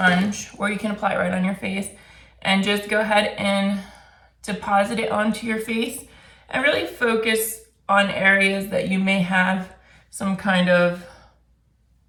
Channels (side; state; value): both; identical; correlation 1.00